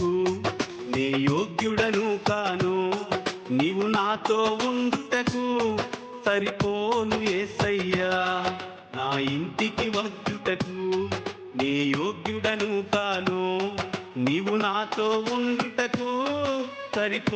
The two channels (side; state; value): both; identical; correlation 1.00